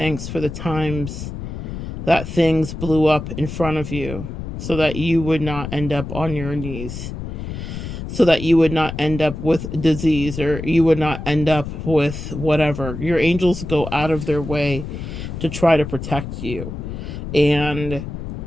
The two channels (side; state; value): left; noise; rumble, 7 dB below the sound